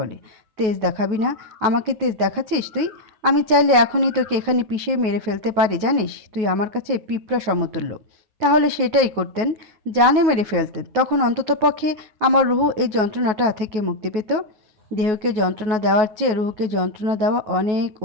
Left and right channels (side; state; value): left; late; 9.4 ms